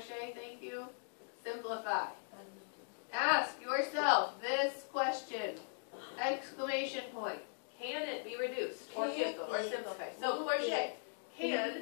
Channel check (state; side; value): silent; right; digital silence